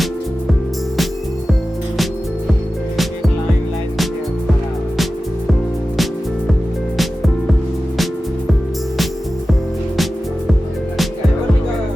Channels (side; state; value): both; normal; correlation 0.94